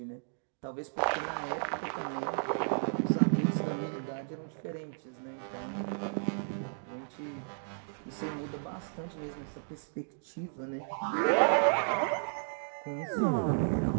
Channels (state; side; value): silent; left; digital silence